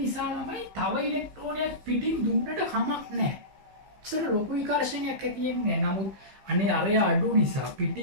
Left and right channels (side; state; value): left; late; 15 ms